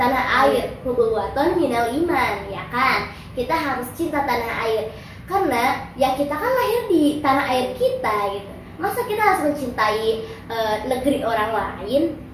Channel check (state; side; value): identical; both; correlation 1.00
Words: air. Hubuwaton minal iman, ya kan? Kita harus cinta tanah air. Karena ya kita kan lahir di tanah air kita gitu. Masa kita harus mencintai negeri orang lain,